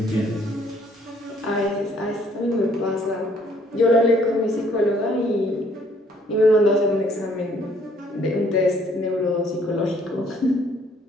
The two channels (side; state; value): both; normal; correlation 0.63